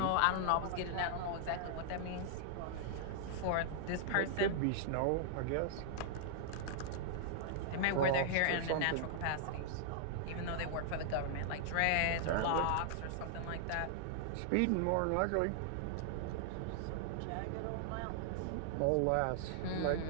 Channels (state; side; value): different; both; correlation -0.01